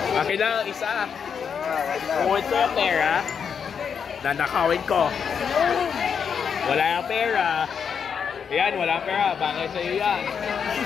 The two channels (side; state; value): right; quieter; 6.9 dB